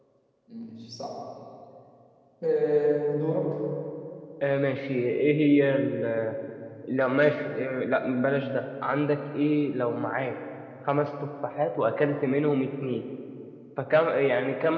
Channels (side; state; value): both; identical; correlation 1.00